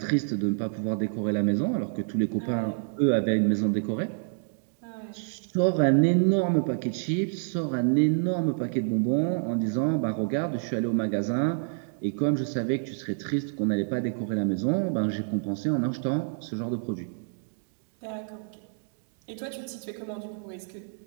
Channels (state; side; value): silent; left; digital silence